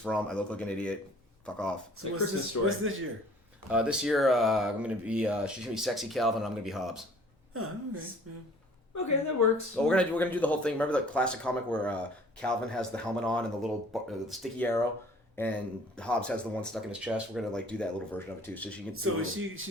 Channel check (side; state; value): both; normal; correlation 0.53